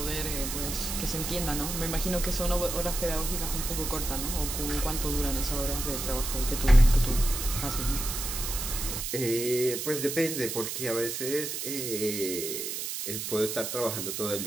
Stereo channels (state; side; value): noise; right; hiss, 4 dB below the sound